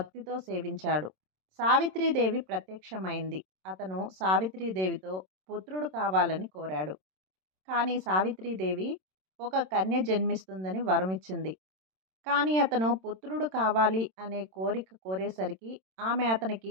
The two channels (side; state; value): left; late; 27 ms